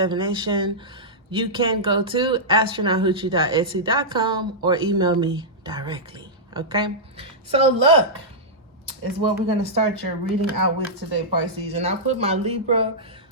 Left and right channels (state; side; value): normal; both; correlation -0.11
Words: you can go to astronauthoochie.etsy.com or email me directly, okay? So luck is what we're gonna start your reading out with today, Pisces. And I put my Libra,